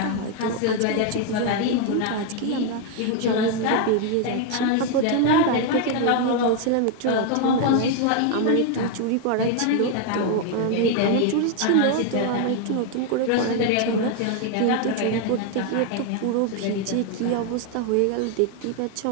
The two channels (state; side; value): different; both; correlation 0.01